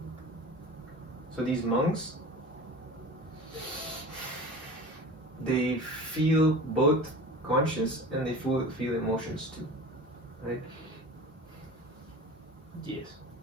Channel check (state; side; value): normal; both; correlation 0.36